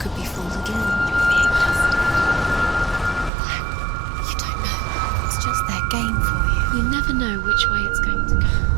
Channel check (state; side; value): drops out; left; at 3.3 s